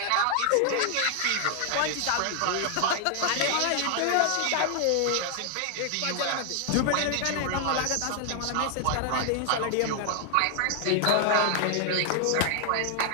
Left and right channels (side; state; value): both; different; correlation 0.00